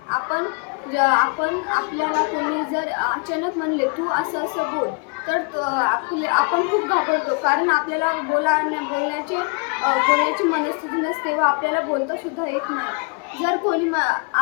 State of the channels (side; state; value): right; quieter; 35.2 dB